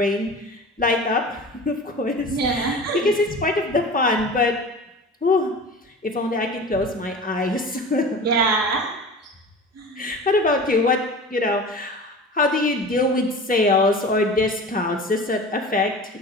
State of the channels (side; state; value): both; normal; correlation 0.36